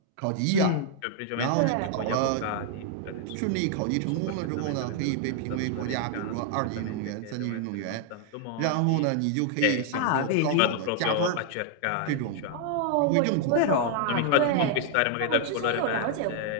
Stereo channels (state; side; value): different; both; correlation 0.00